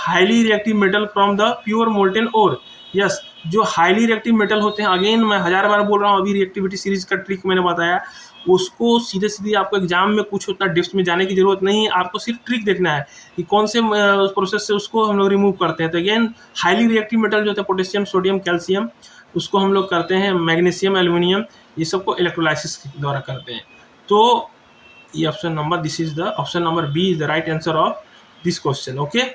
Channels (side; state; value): both; identical; correlation 1.00